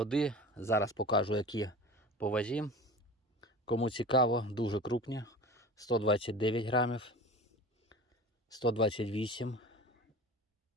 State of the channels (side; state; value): both; normal; correlation 0.37